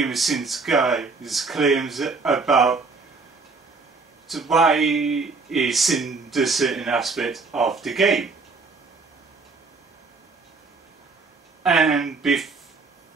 of Sins guy's claims about why he sinned a certain aspect of the game. And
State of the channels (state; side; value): quieter; left; 4.2 dB